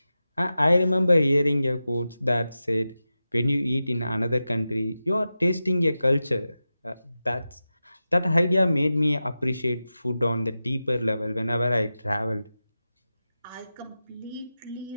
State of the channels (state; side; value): inverted; both; correlation -0.93